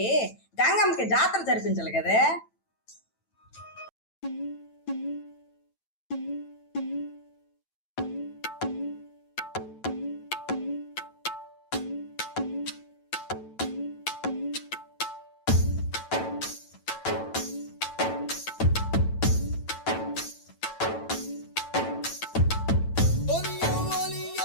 గంగమ్మకి జాతర జరిపించాలి కదే.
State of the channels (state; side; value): late; right; 9.0 ms